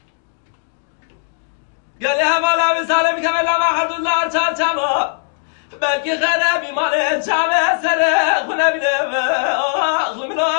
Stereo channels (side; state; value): right; silent; digital silence